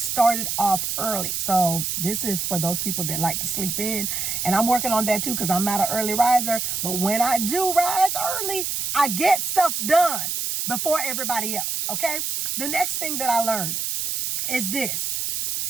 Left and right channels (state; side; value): noise; right; hiss, 1 dB below the sound